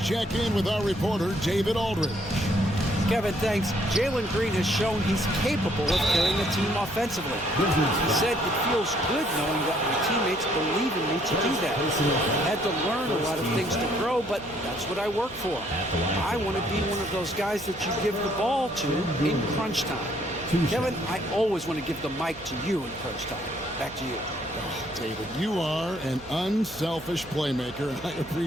check in with our reporter, David Aldridge. Kevin, thanks. Jalen Green has shown he's capable of carrying a team offensively. He said it feels good knowing that my teammates believe in me to do that. I had to learn a lot of things to grow, but that's what I work for. I want to be one of those guys that you give the ball to in crunch time. Kevin, I always want to give the mic to you in crunch time. Back to you. Oh, David, you are an unselfish playmaker, and I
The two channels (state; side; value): noise; right; hum, 19 dB below the sound